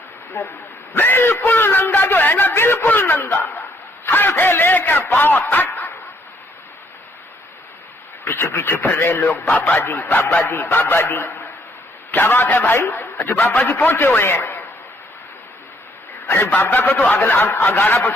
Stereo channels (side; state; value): both; normal; correlation 0.68